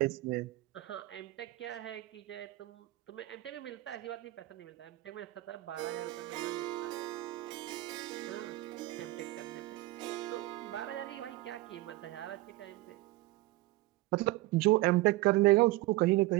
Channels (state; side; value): quieter; left; 18.7 dB